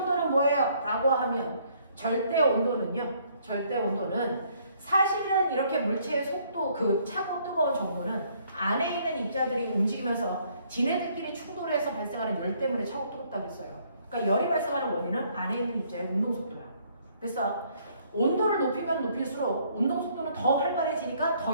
뭐예요? 라고 하면 절대 온도는요. 절대 온도는 사실은 이렇게 물체의 속도, 그 차고 뜨거운 정도는 안에 있는 입자들이 움직이면서 지네들끼리 충돌해서 발생하는 열 때문에 차고 뜨겁다고 했어요. 그러니까 열이 발생하는 원인은 안에 있는 입자의 운동 속도야. 그래서 온도를 높이면 높일수록 운동 속도는 더 활발해지니까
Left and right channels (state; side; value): inverted; both; correlation -0.65